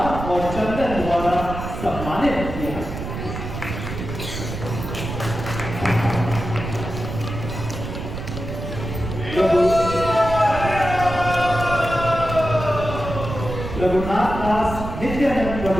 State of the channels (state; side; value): noise; right; rumble, 7 dB below the sound